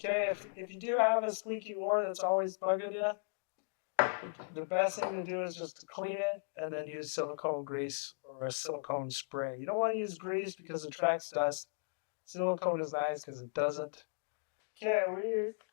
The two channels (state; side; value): silent; right; digital silence